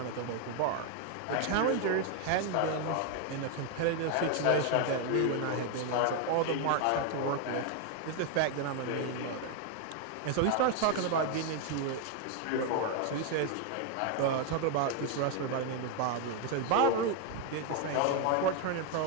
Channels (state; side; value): different; both; correlation 0.01